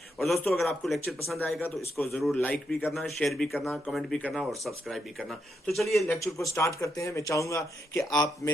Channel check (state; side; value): normal; both; correlation 0.81